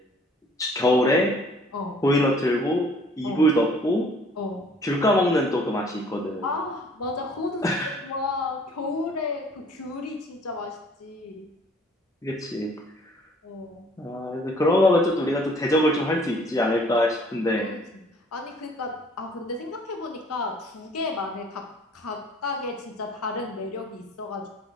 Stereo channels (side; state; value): both; normal; correlation 0.56